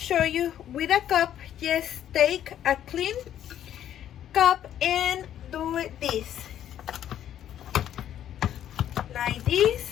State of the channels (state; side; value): quieter; right; 10.8 dB